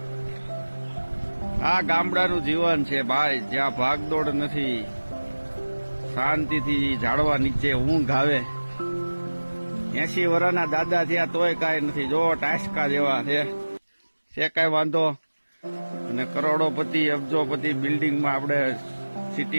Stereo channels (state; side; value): inverted; both; correlation -1.00